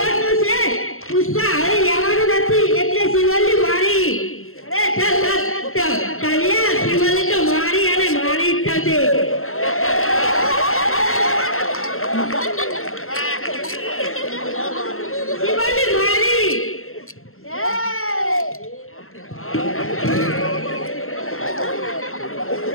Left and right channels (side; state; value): right; late; 0.62 ms